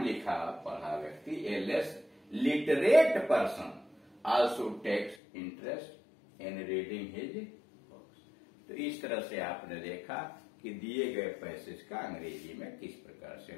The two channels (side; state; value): right; drops out; at 5.2 s